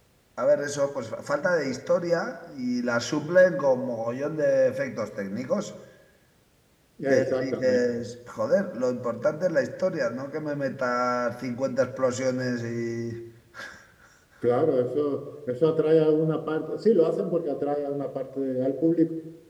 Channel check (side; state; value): both; identical; correlation 1.00